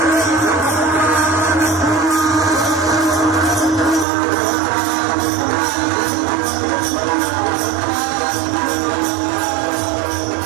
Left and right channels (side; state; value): left; drops out; at 4.0 s